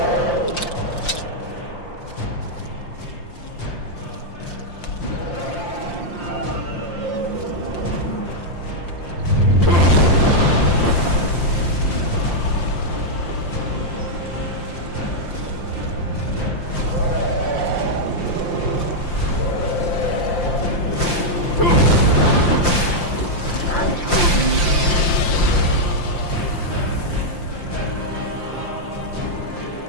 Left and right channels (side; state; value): right; late; 5.8 ms